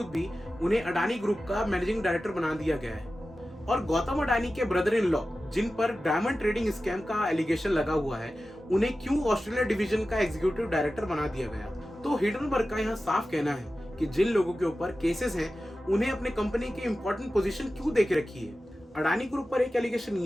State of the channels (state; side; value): normal; both; correlation 0.94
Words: भी उन्हें अडानी ग्रुप का मैनेजिंग डायरेक्टर बना दिया गया है। और गौतम अडानी के ब्रदर इन लॉ, जिन पर डायमंड ट्रेडिंग स्कैम का एलिगेशन लगा हुआ है, उन्हें क्यों ऑस्ट्रेलिया डिवीजन का एग्जीक्यूटिव डायरेक्टर बना दिया गया। तो हिडनबर्ग का यहाँ साफ कहना है कि जिन लोगों के ऊपर केसेस हैं उन्हें अपने कंपनी की इंपॉर्टेंट पोजीशन क्यों देके रखी है। अडानी ग्रुप पर एक एलिगेशन